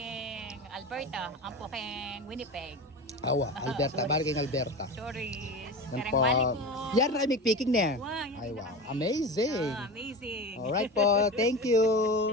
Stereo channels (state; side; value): normal; both; correlation 0.28